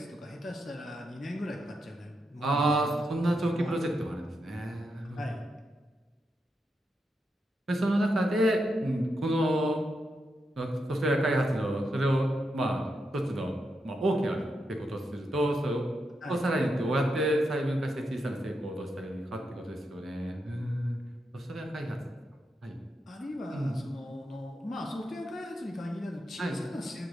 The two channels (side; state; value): both; normal; correlation 0.84